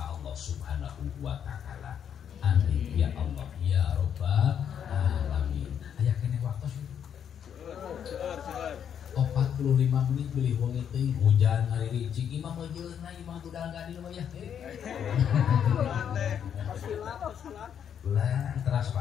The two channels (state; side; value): quieter; right; 8.5 dB